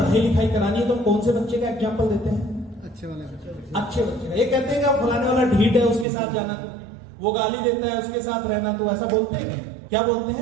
लिखाई करानी है तो कौन से बच्चे का एग्जाम्पल देते हैं? अच्छे वाले। अच्छे बच्चे का। ये कहते हैं कि फलाने वाला ढीठ है, उसके साथ जाना, तो वो गाली देता है, उसके साथ रहना, तो ऐसा बोलते हैं क्या बोलते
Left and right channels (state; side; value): drops out; left; at 6.1 s